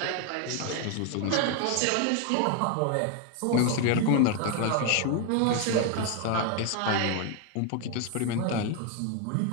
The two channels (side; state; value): both; different; correlation 0.01